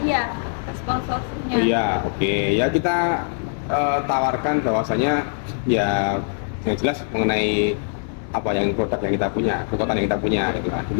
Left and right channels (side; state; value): right; silent; digital silence